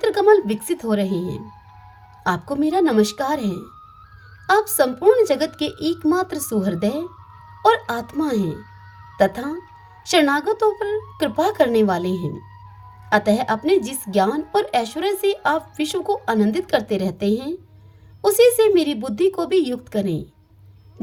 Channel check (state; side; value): identical; both; correlation 1.00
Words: कमल विकसित हो रहे हैं। आपको मेरा नमस्कार है। आप संपूर्ण जगत के एकमात्र सुहृदय और आत्मा हैं तथा शरणागतों पर कृपा करने वाले हैं। अतः अपने जिस ज्ञान और ऐश्वर्य से आप विश्व को आनंदित करते रहते हैं, उसी से मेरी बुद्धि को भी युक्त करें,